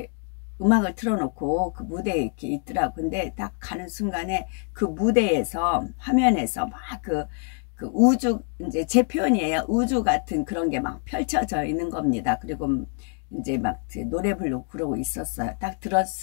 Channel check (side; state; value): right; quieter; 38.5 dB